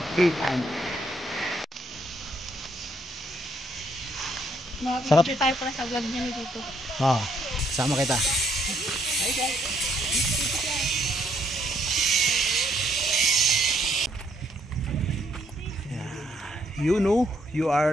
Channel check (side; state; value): both; normal; correlation 0.70